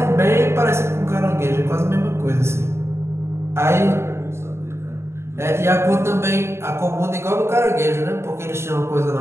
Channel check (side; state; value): left; late; 0.13 ms